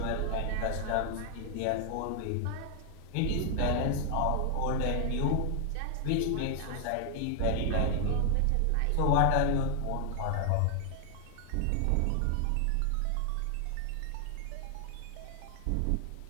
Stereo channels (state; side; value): different; both; correlation 0.00